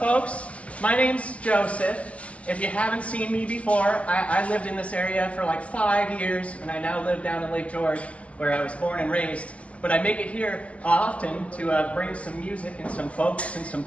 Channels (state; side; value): late; right; 0.063 ms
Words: My name's Joseph. If you haven't seen me before, I lived in this area for like 5 years, and I now live down in Lake George, where I was born and raised. But I make it here often to bring some music and some folks and some